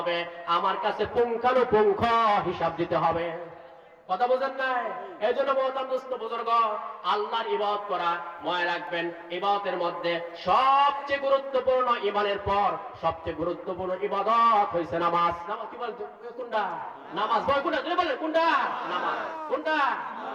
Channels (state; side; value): identical; both; correlation 1.00